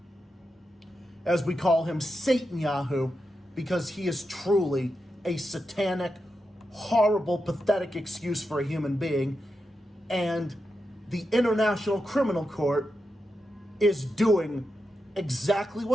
As we call him, SATANYAHU, because he is truly a satanic, horrible, pathetic excuse for a human being. And the International Criminal Court is doing exactly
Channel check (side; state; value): both; normal; correlation 0.88